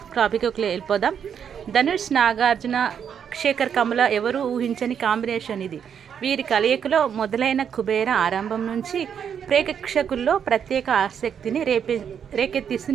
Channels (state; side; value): quieter; left; 7.9 dB